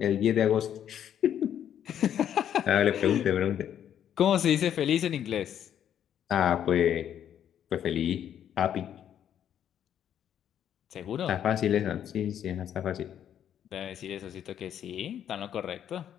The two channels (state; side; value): quieter; right; 9.8 dB